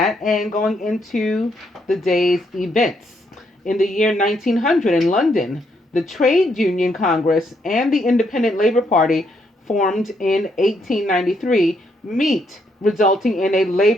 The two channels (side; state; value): both; normal; correlation 0.75